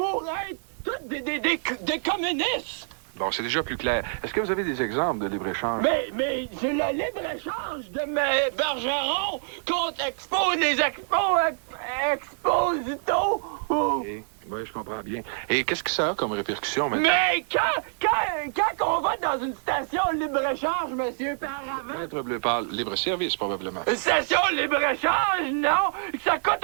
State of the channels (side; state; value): left; silent; digital silence